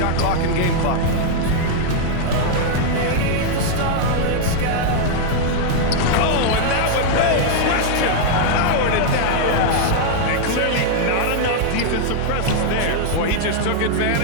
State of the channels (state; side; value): different; both; correlation -0.01